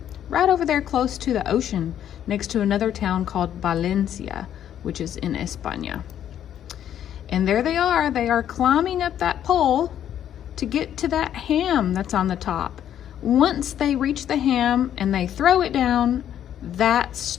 right over there close to the ocean, next to another town called Valencia, which is in España. And there they are climbing up that pole to get to that ham that's on the top. Once they reach the ham and they throw it down, that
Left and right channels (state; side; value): quieter; right; 10.3 dB